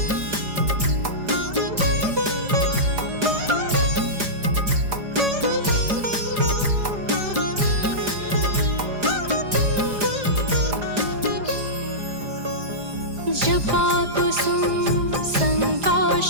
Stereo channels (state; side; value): late; left; 4.9 ms